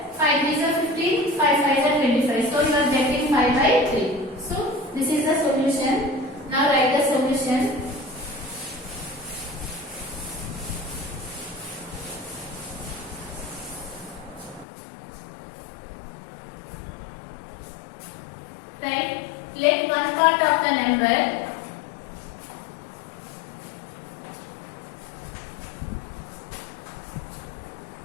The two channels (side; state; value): right; drops out; at 14.7 s